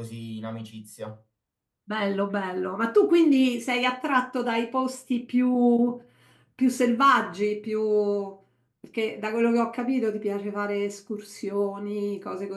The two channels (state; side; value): identical; both; correlation 1.00